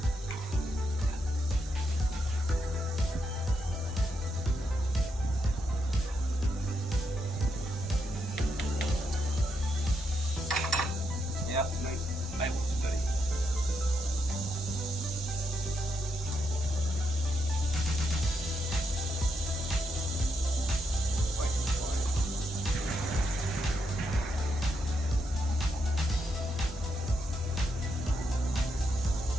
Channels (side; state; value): both; normal; correlation 0.81